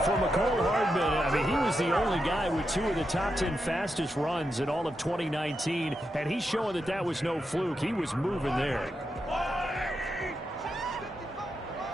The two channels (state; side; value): normal; both; correlation 0.86